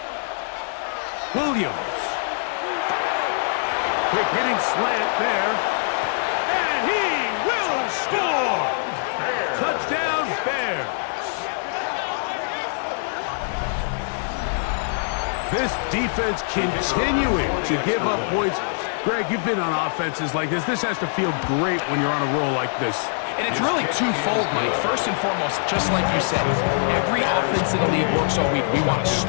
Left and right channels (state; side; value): silent; right; digital silence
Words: Williams. Quick hitting slant there. And he will score! Touchdown, Bears. This defense continuing to give up points. Greg, you've been on offenses like this. This has to feel great when you're on a roll like this. And it's really twofold, Mike. First and foremost, just like you said, every offense in the league works all week. We want to